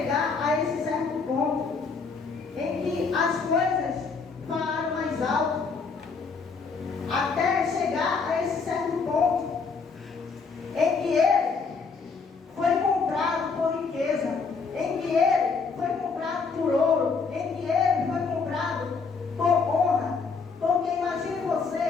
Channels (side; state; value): right; quieter; 4.9 dB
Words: a esse certo ponto em que as coisas falaram mais alto. Até chegar a esse certo ponto em que ele foi comprado por riqueza, em que ele foi comprado por ouro, em que ele foi comprado por honra. Porque imagine